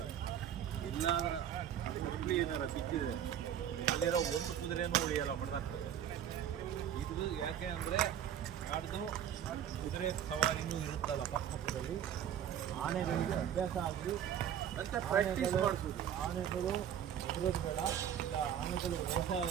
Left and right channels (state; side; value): quieter; left; 9.7 dB